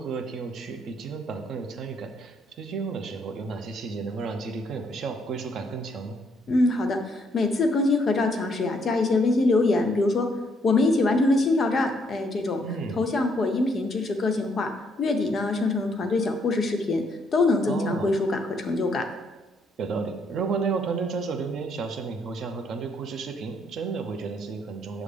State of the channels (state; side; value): normal; both; correlation 0.71